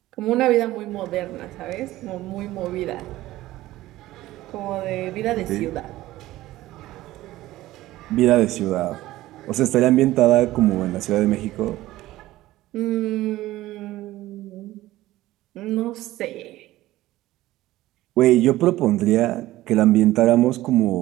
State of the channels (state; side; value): quieter; left; 16.3 dB